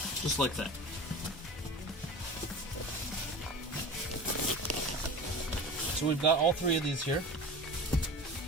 Just like that. So we've got all three of these here.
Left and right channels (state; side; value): normal; both; correlation 0.33